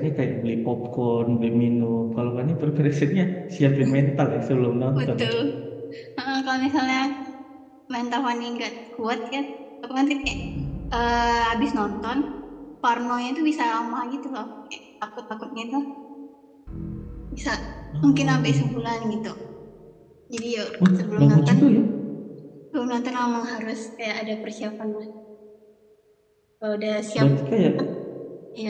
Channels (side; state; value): both; identical; correlation 1.00